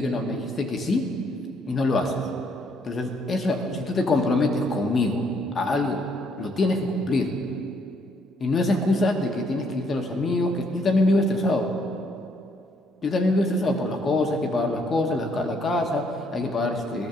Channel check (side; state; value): both; normal; correlation 0.69